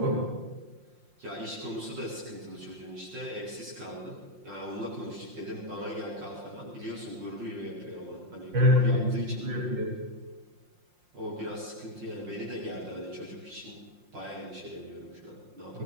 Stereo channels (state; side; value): late; left; 5.6 ms